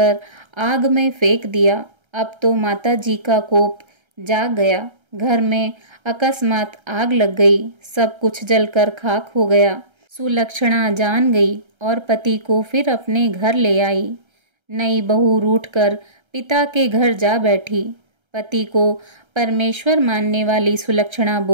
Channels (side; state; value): left; late; 1.3 ms